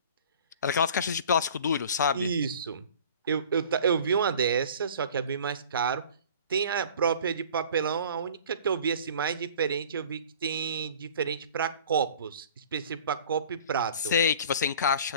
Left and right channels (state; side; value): inverted; both; correlation -0.46